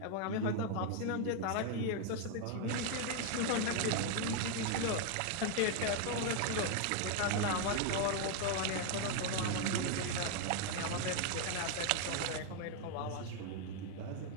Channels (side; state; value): both; different; correlation 0.00